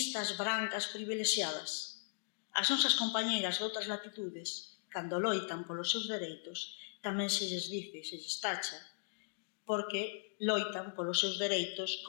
brancas, privilexiadas, as nosas compañeiras de outras latitudes, cando loitan polos seus dereitos, tamén se lles dice, se lles tacha, porque loitan polos seus dereitos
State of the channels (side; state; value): right; silent; digital silence